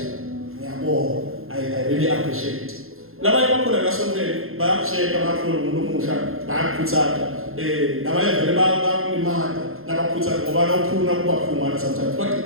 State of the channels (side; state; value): left; late; 0.61 ms